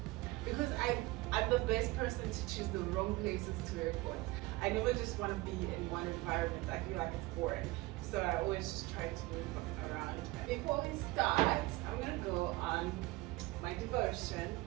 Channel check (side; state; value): left; quieter; 20.3 dB